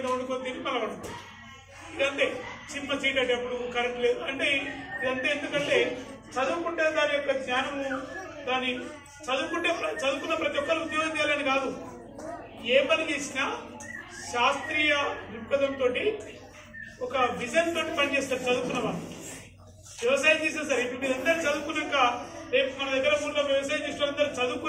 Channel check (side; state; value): both; identical; correlation 1.00